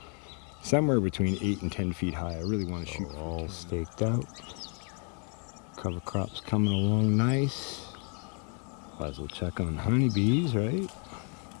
somewhere between 8 and 10 feet high. I really want to shoot all staked out. Cover crops coming along nice. Might as well check on honeybees, right?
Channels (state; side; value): quieter; right; 38.2 dB